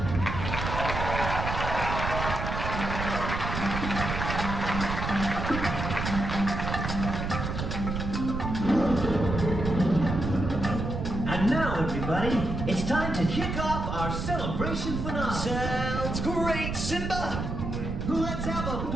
And now, everybody, it's time to kick off our celebration finale. Sounds great, Simba! Let's have a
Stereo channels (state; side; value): noise; right; rumble, 3 dB below the sound